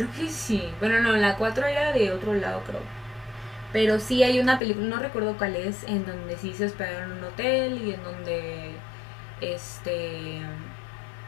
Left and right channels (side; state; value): right; drops out; at 4.6 s